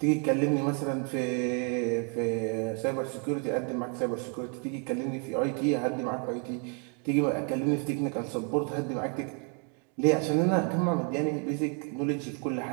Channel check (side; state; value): left; quieter; 39.5 dB